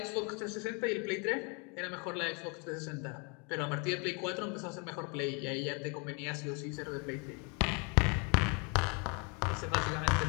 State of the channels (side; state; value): right; quieter; 33.7 dB